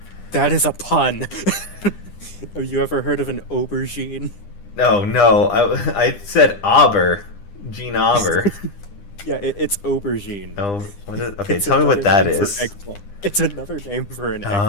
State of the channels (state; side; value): late; right; 9.9 ms